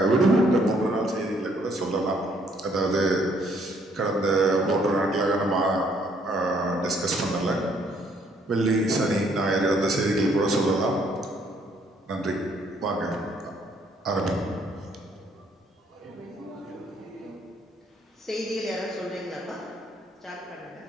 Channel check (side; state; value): both; normal; correlation 0.66